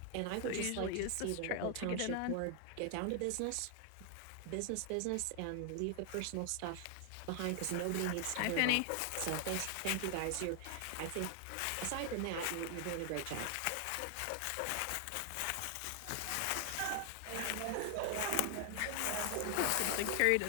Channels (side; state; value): both; different; correlation 0.00